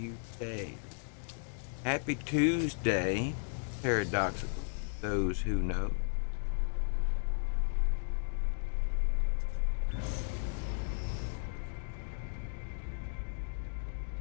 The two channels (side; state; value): right; silent; digital silence